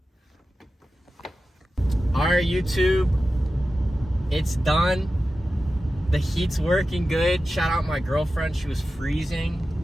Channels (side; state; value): both; normal; correlation 0.93